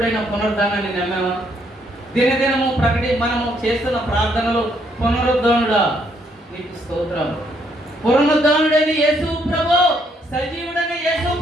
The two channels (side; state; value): both; normal; correlation 0.71